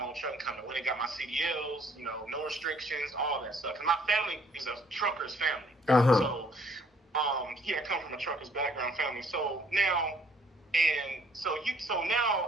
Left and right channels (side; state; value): both; normal; correlation 0.62